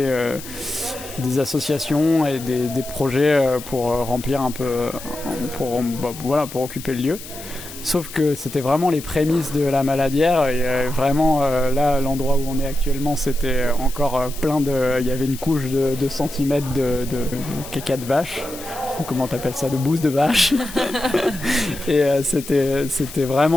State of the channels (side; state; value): left; noise; hiss, 14 dB below the sound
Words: associations et des projets pour remplir un peu, pour occuper le lieu. Sauf que c'était vraiment les prémices de la Maladière et vraiment là, l'endroit où on est actuellement, c'était encore il y avait une couche de 2 centimètres de caca de vache. Comment t'appelles ça, de bouse de vache. Et c'était